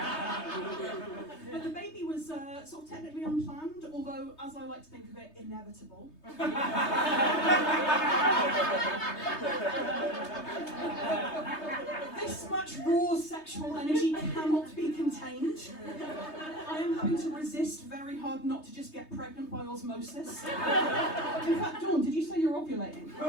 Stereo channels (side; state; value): right; late; 3.2 ms